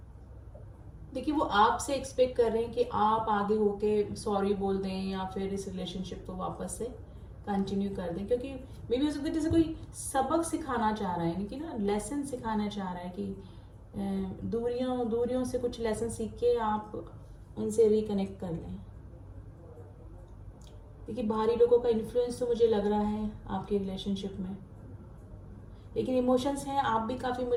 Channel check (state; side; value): identical; both; correlation 1.00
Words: देखिए वो आपसे एक्सपेक्ट कर रहे हैं कि आप आगे होके सॉरी बोल दें या फिर इस रिलेशनशिप को वापस से कंटिन्यू कर दें, क्योंकि मे भी हो सकता है जैसे कोई सबक सिखाना चाह रहा है, यानी कि ना लेसन सिखाना चाह रहा है कि दूरियों से कुछ लेसन सीख के आप उनसे रिकनेक्ट कर लें। देखिए बाहरी लोगों का इन्फ्लुएंस तो मुझे लग रहा है आपके रिलेशनशिप में, लेकिन इमोशंस हैं, आप भी काफ़ी